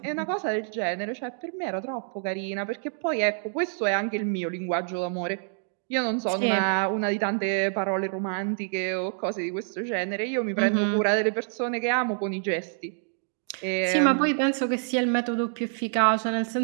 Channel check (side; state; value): left; silent; 60 dB below the other